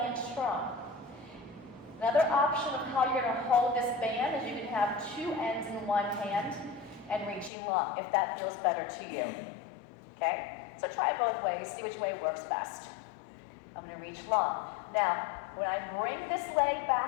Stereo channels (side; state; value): right; drops out; at 7.5 s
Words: in strong. Another option of how you're going to hold this band is you can have 2 ends in one hand and reaching long, if that feels better to you. Okay? So try both ways. See which way works best. I'm going to reach long. Now, when I bring this leg